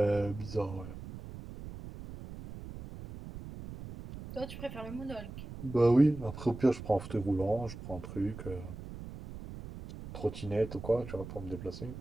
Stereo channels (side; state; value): right; noise; rumble, 11 dB below the sound